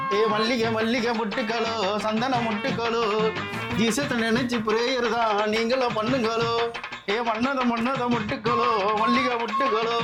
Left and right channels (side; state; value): both; identical; correlation 1.00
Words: மல்லிகை மல்லிகை முட்டுக்களோ, சந்தன முட்டுக்களோ, ஜீசத்தை நினைச்சு பிரேயர் தான் நீங்களும் பண்ணுங்களோ. மன்னத மன்னத முட்டுக்களோ, மல்லிகை முட்டுக்களோ,